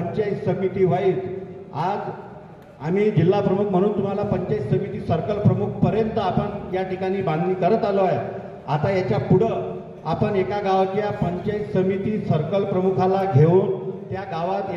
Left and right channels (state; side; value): identical; both; correlation 1.00